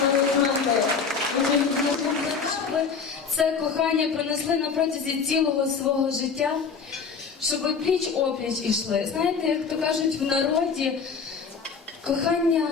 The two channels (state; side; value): quieter; right; 5.6 dB